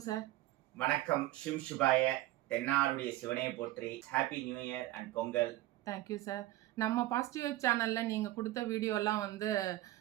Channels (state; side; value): quieter; left; 16.3 dB